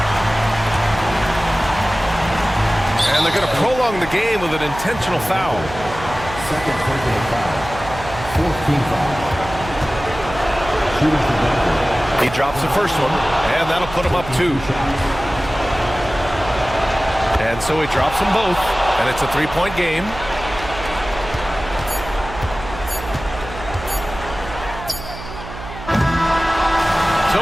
And they're going to prolong the game with an intentional foul. Second personal foul. 14th foul. Shooting for Denver. He drops the first one, and that'll put him up 2. And so he drops them both, and it's a 3-point game. So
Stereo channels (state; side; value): noise; right; hum, 12 dB below the sound